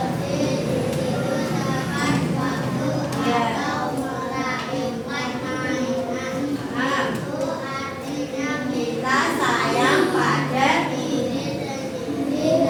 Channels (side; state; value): both; identical; correlation 1.00